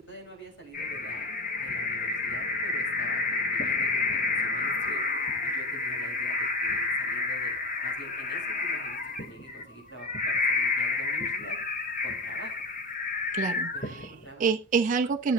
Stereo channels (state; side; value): normal; both; correlation 0.23